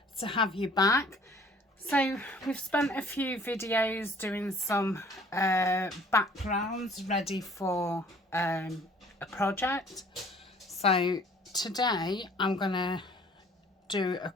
have you back. So we've spent a few videos doing some backgrounds ready for a project. So today I'm going to do a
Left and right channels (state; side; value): normal; both; correlation 0.54